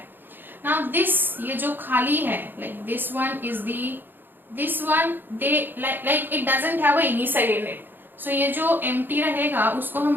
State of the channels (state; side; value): late; left; 0.095 ms